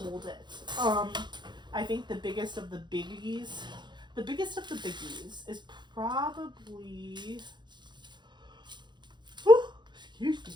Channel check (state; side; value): late; left; 0.22 ms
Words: it. I think the biggest of the biggies is probably, excuse me,